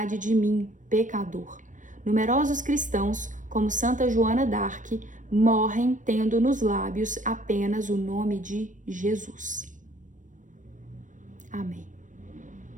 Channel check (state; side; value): late; left; 0.37 ms